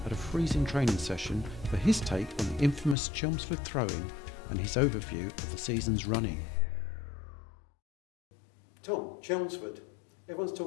at a freezing training session for his take on the infamous Chelmsford Throwin and his overview of the season's running. Tom, Chelmsford, everyone's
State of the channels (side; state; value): right; drops out; at 3.0 s